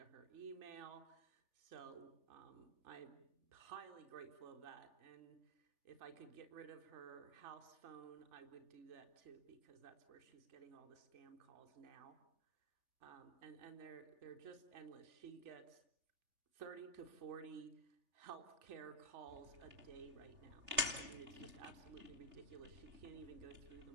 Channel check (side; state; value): left; late; 3.3 ms